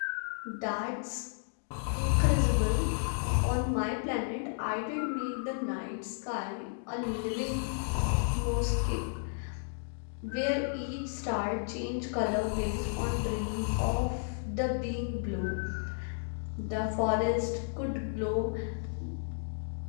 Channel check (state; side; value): silent; right; digital silence